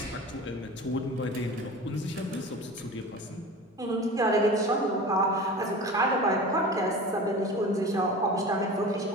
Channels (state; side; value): normal; both; correlation 0.35